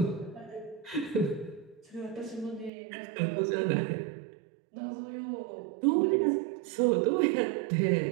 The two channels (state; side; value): drops out; left; at 2.7 s